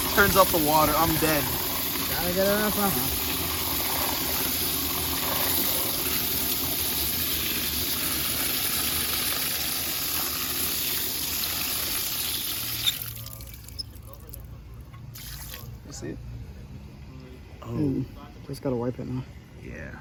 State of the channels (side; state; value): both; identical; correlation 1.00